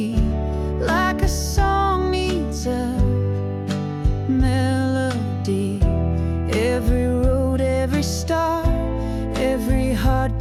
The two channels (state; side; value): identical; both; correlation 1.00